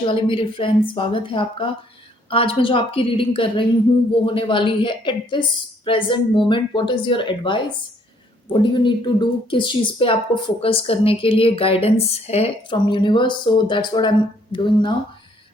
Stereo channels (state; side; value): normal; both; correlation 0.65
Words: वाले मेरे फ्रेंड्स, स्वागत है आपका। आज मैं जो आपकी रीडिंग कर रही हूँ वो होने वाली है at this present moment what is your advice, what do you need to do, किस चीज़ पे आपको फोकस करने के लिए गाइडेंस है from universe. So that's what I am doing now.